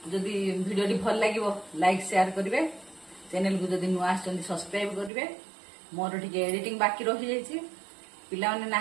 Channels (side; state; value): left; drops out; at 5.1 s